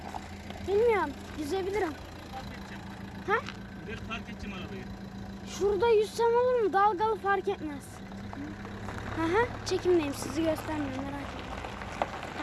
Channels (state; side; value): identical; both; correlation 1.00